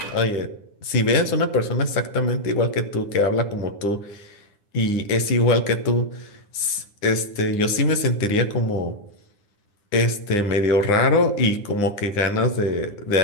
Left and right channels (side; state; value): right; late; 9.8 ms